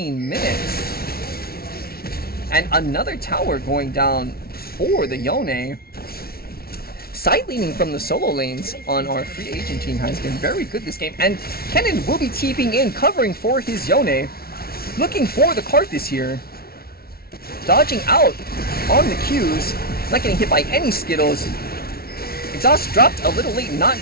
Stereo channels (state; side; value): late; right; 0.44 ms